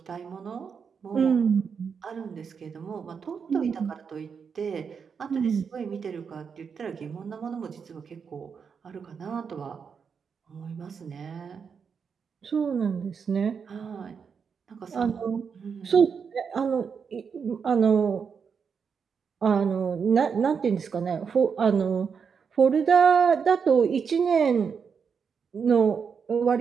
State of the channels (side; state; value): left; quieter; 6.3 dB